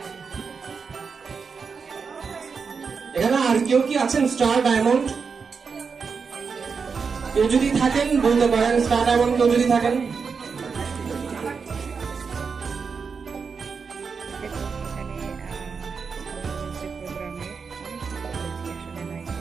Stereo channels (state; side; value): quieter; left; 5.5 dB